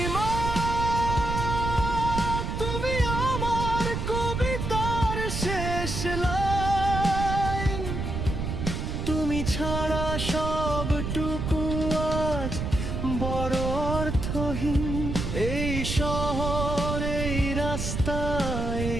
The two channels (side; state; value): right; noise; rumble, 3 dB below the sound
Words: তুমি আমার কবিতার শেষ লাইন, তুমি ছাড়া সবটুকু আজ বড় অর্থহীন। এই শহর, এই রাস্তা,